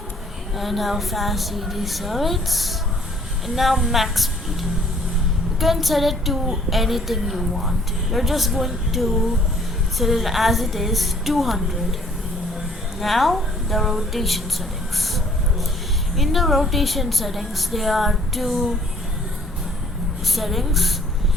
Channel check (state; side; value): normal; both; correlation 0.59